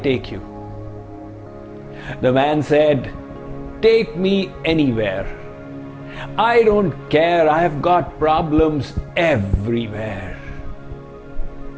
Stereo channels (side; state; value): both; identical; correlation 1.00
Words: you?" The man said, "Take me anywhere. I don't care, I have got problems everywhere."